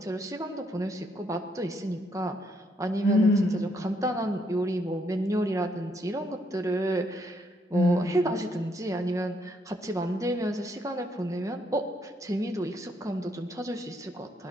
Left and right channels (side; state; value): both; normal; correlation 0.73